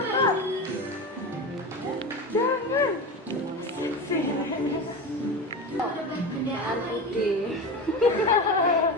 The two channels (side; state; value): both; normal; correlation 0.25